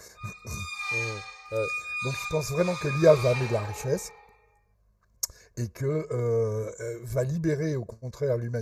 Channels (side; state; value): both; identical; correlation 1.00